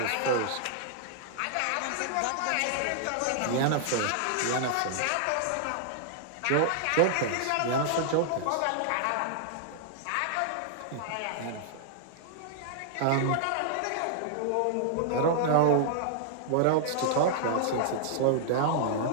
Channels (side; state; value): both; different; correlation -0.01